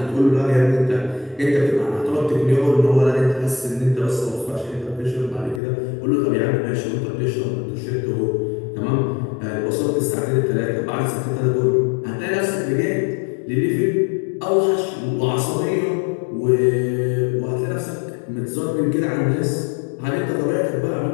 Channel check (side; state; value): right; drops out; at 5.6 s